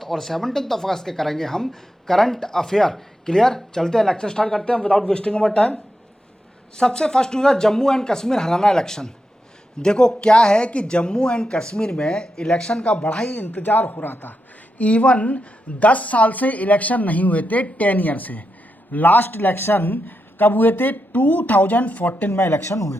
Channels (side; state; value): both; normal; correlation 0.86